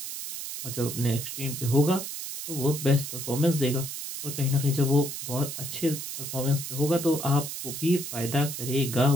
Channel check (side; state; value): right; noise; hiss, 7 dB below the sound